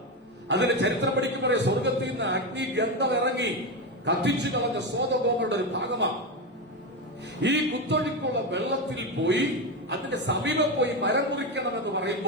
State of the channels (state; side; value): normal; both; correlation 0.14